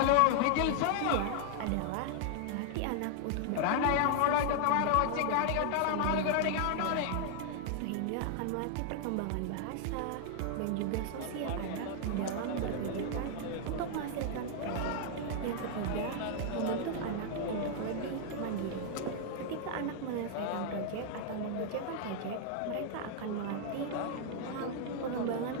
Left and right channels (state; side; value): different; both; correlation 0.00